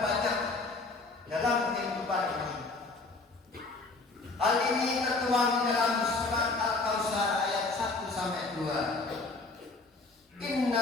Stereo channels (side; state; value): right; quieter; 3.6 dB